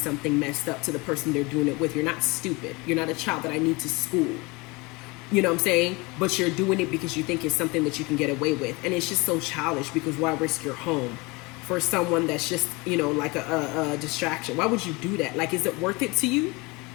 messed up to the person they're doing it with. You're not stupid. You're not a child that I need to school. You know what I'm saying? But you're doing it because you think it's something that you can get away with. And it's just so childish because why risk your home for someone that's just, you know, like a distraction? Why would you do that? Like, is it worth it to you?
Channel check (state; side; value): quieter; right; 25.5 dB